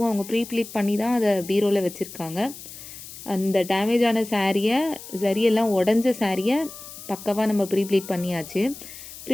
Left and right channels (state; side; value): noise; left; hiss, 14 dB below the sound